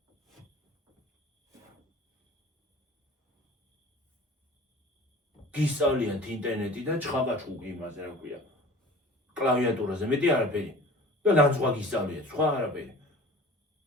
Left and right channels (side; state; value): both; normal; correlation 0.42